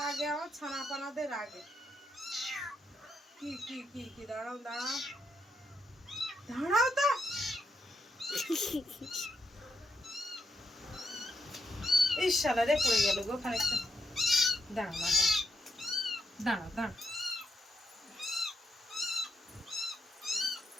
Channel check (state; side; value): normal; both; correlation 0.81